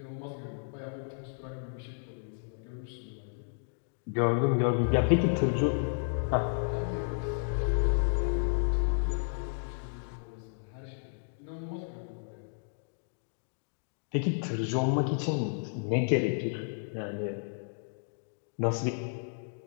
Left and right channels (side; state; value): right; silent; digital silence